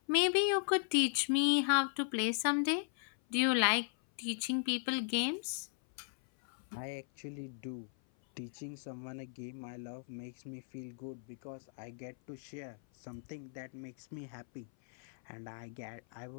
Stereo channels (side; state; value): right; silent; 53 dB below the other